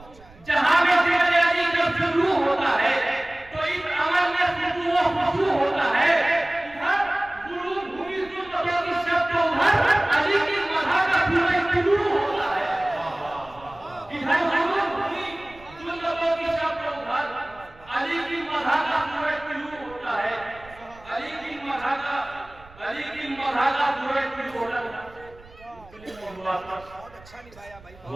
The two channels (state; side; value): noise; right; rumble, 24 dB below the sound